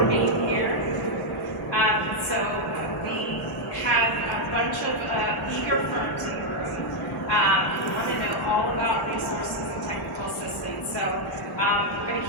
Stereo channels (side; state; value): both; normal; correlation -0.01